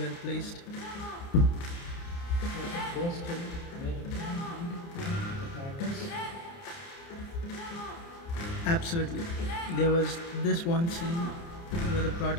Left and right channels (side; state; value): right; late; 29 ms